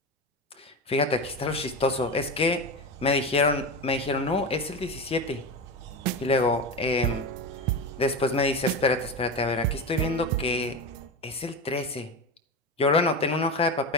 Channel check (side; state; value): both; normal; correlation 0.22